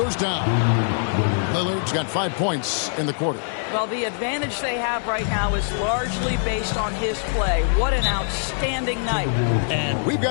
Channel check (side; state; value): right; silent; digital silence